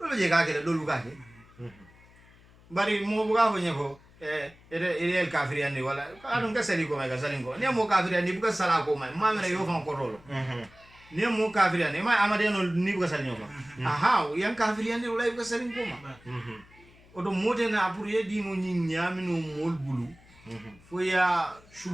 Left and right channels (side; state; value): left; noise; hum, 26 dB below the sound